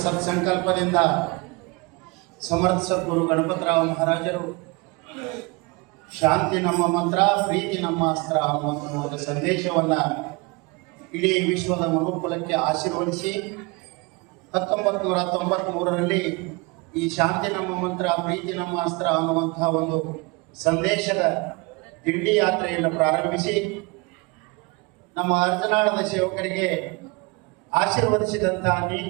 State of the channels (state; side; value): quieter; left; 26.8 dB